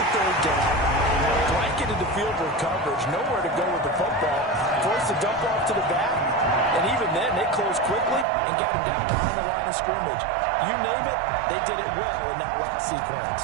the third down, blanketed the field with coverage, nowhere to go with the football, forced the dump off to the back, and even then they closed quickly and got it down behind the line of scrimmage. You name it, they did it well in that last sequence.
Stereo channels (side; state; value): left; drops out; at 8.2 s